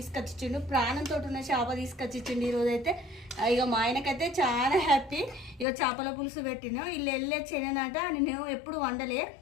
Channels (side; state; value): right; drops out; at 5.7 s